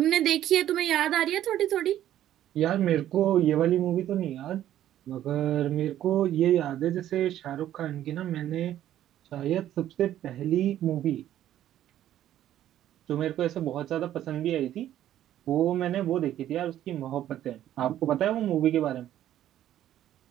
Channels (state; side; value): quieter; left; 12.1 dB